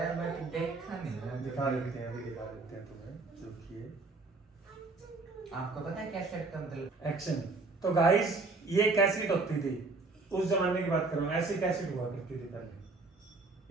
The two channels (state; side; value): quieter; left; 3.6 dB